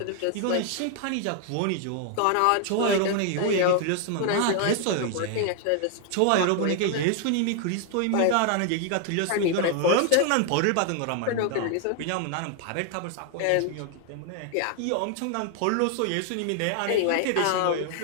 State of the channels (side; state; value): both; different; correlation 0.00